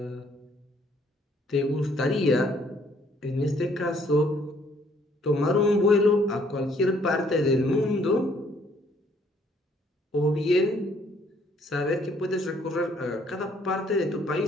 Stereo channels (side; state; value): both; normal; correlation 0.64